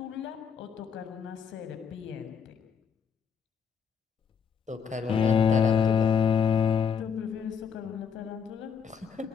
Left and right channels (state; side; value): quieter; right; 6.8 dB